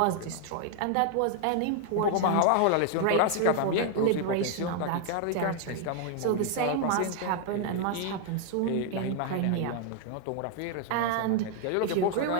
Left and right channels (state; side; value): different; both; correlation 0.00